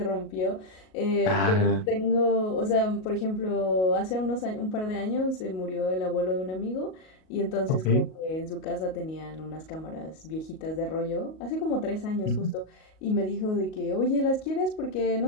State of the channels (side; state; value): right; late; 38 ms